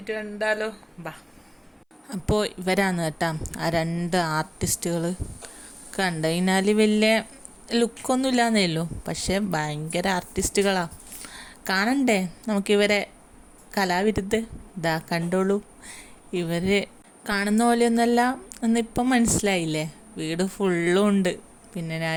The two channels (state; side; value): identical; both; correlation 1.00